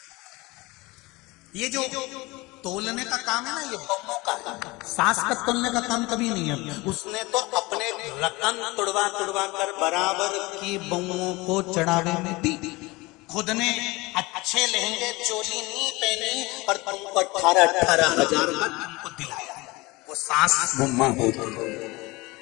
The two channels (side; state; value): right; quieter; 22.7 dB